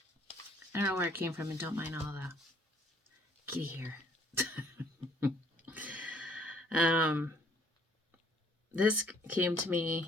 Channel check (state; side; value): normal; both; correlation 0.61